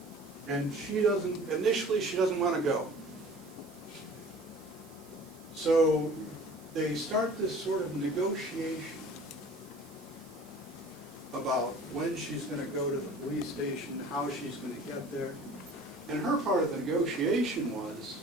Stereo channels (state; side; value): noise; right; hiss, 24 dB below the sound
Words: And she doesn't, initially she doesn't want to go. So they start this sort of negotiation about when she's going to go to the police station, how she's going to get there. And her part of the negotiation was